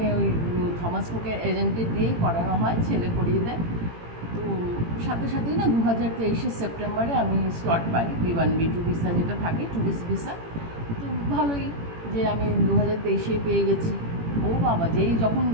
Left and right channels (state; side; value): late; left; 18 ms